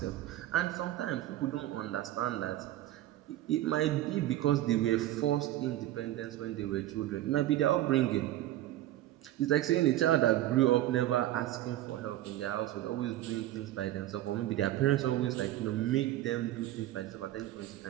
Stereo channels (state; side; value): quieter; left; 14.2 dB